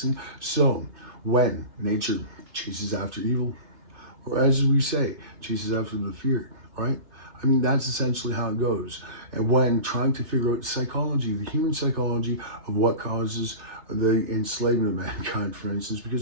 So when nature chases after evil, or as we say, chases after the fear, right? I mean, that's essentially how it goes. And when trying to figure out psychology, the human psychology of what causes the enslavement of mankind, for instance,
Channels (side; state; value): left; late; 2.7 ms